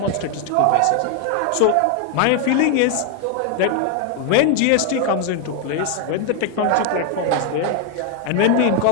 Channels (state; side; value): different; both; correlation 0.01